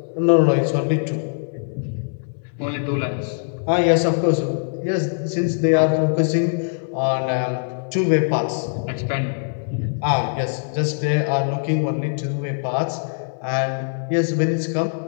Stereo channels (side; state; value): right; silent; digital silence